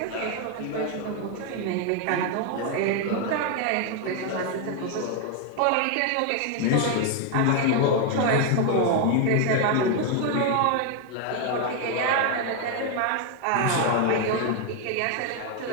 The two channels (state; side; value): different; both; correlation 0.01